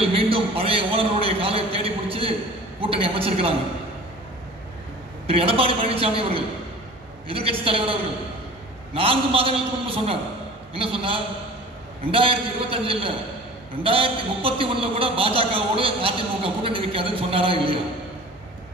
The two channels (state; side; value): normal; both; correlation 0.42